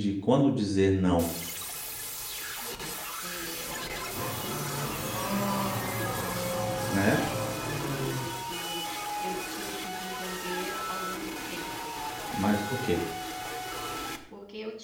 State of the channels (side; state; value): both; identical; correlation 1.00